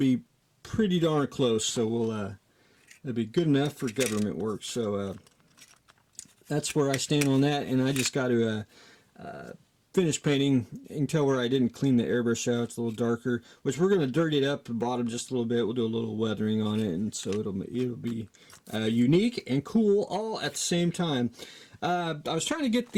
pretty darn close, so it'll be good enough for government work. So that's where I stand on that, and I just got to finish painting. You can tell where I didn't clean the airbrush out. It's a little darker, which we're going to dirty it up the bottom just a little bit. We'll do a little weathering on it, and so it'll be unique and cool all at the same time. I was trying to get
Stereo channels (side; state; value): both; identical; correlation 1.00